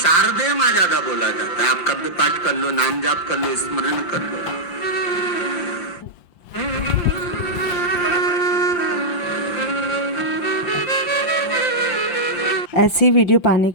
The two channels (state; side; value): late; right; 5.8 ms